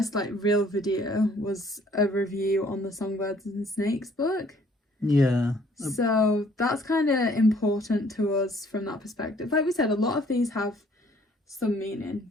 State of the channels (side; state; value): both; normal; correlation 0.60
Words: like real video was a review on the Songbirds and Snakes book. Yeah. So that's kind of important to us from that perspective. Like we said, a lot of these have some meaning